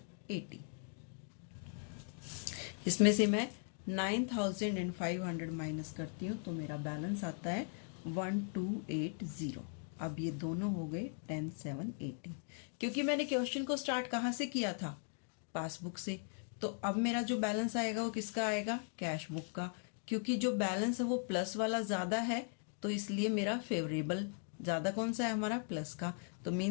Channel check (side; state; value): right; silent; 52 dB below the other